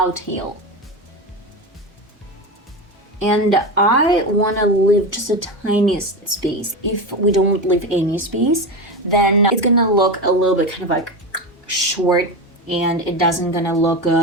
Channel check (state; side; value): normal; both; correlation 0.20